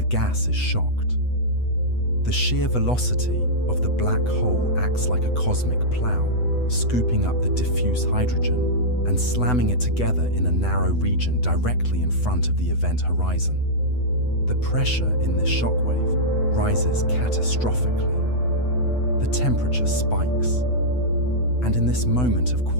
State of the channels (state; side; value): late; right; 8.0 ms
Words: gas is shocked. The sheer velocity of the black hole acts like a cosmic plow, scooping up the diffuse hydrogen and slamming it together in a narrow region directly in front of the event horizon. The pressure in this shockwave rises catastrophically. The temperature spikes. And in this moment of